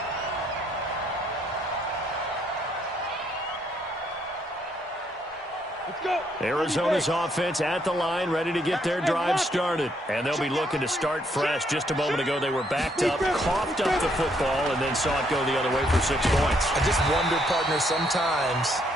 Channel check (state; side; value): normal; both; correlation 0.71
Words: Arizona's offense at the line, ready to get their drive started. And they'll be looking to start fresh. Just a moment ago, they were backed up, coughed up the football, and then saw it go the other way for 6 points. I just wonder, partner, sometimes